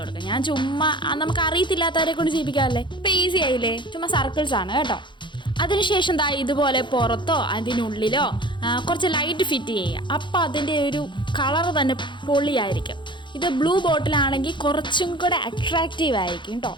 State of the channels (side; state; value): right; late; 0.23 ms